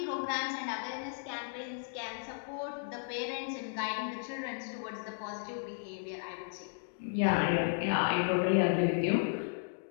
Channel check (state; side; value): silent; right; digital silence